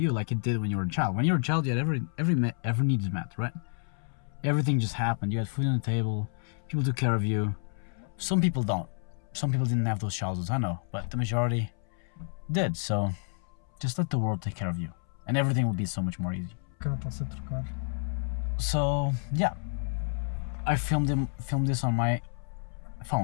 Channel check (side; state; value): right; silent; 58 dB below the other